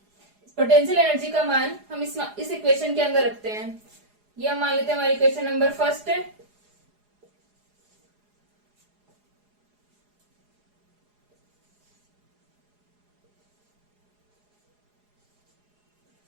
पोटेंशियल एनर्जी का मान हम इस इक्वेशन के अंदर रखते हैं। ये हम मान लेते हैं हमारी इक्वेशन नंबर फर्स्ट है।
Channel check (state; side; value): late; left; 4.8 ms